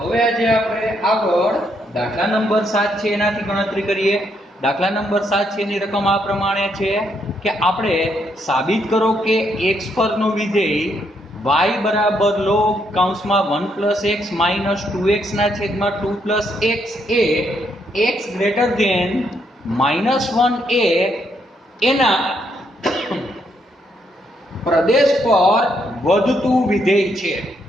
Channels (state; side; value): normal; both; correlation 0.75